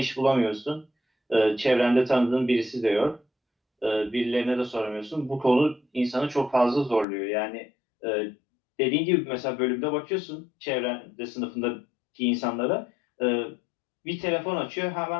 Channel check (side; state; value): right; drops out; at 7.1 s